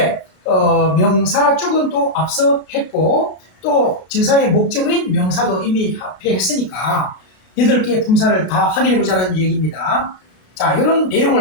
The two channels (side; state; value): right; late; 32 ms